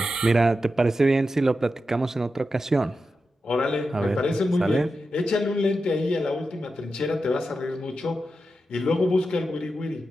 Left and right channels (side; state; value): both; normal; correlation 0.90